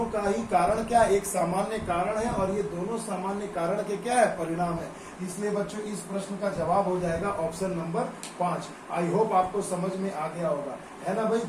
का ही कारण क्या, एक सामान्य कारण है, और ये दोनों सामान्य कारण के क्या है, परिणाम है। इसलिए बच्चों इस प्रश्न का जवाब हो जाएगा ऑप्शन नंबर 5। आई होप आपको समझ में आ गया होगा, है ना भाई।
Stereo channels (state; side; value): identical; both; correlation 1.00